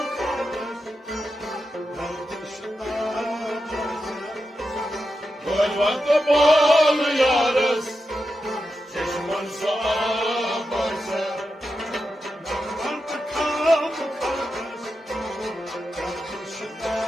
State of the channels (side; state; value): both; normal; correlation 0.88